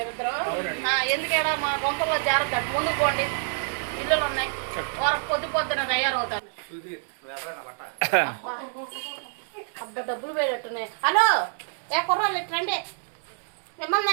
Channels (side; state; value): left; silent; 59 dB below the other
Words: ఎందుకేడా మా గొంపల్లో జాగ్రత్త. ముందుకు పోండి, ఇల్లులు ఉన్నాయి. పొద్దున తయారవుతారు. అబ్బా, డబ్బులు వేడట్టున్నాయి. హలో, ఏ కుర్రాళ్ళు రండి.